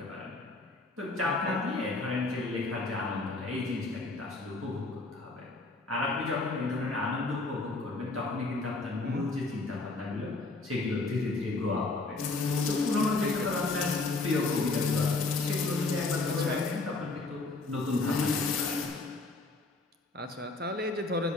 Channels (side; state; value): right; quieter; 3.4 dB